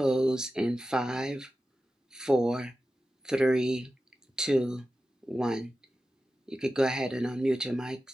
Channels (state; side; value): normal; both; correlation 0.93